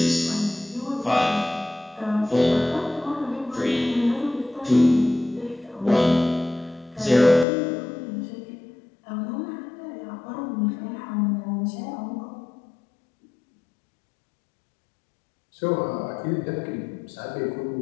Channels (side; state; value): right; drops out; at 7.5 s